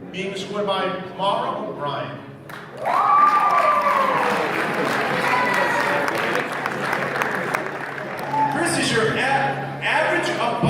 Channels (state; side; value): identical; both; correlation 1.00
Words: being escorted by Mara O'Brien. Chris is your average,